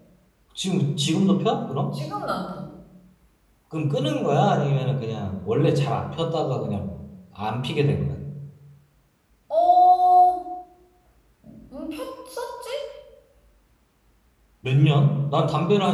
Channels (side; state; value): both; identical; correlation 1.00